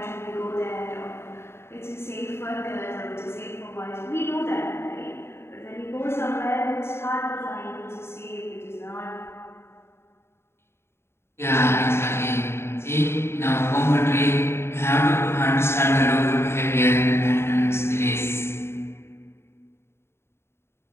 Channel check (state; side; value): late; right; 0.12 ms